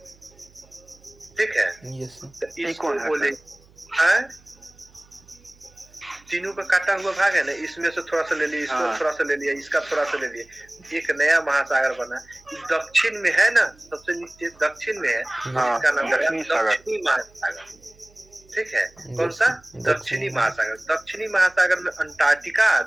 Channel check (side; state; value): right; noise; hum, 28 dB below the sound